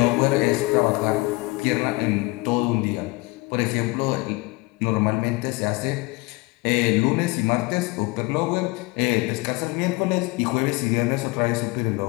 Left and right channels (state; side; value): quieter; right; 24.4 dB